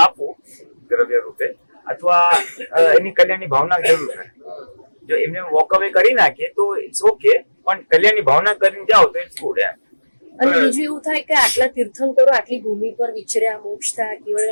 આપવું દ્રવ્ય રૂપે, અથવા એની કલ્યાણની ભાવના જરૂર છે. જો એમને વોક અવે કરી નાખીએ તો ઇટ્સ ઓકે, પણ કલ્યાણની ભાવના કરીને જાઓ તો ઇટ્સ ગુડ. અને બીજું એવું થાય કે આટલા તીર્થંકરો આટલી ભૂમિ પર વિચર્યા, મોક્ષ થયા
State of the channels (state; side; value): inverted; both; correlation -1.00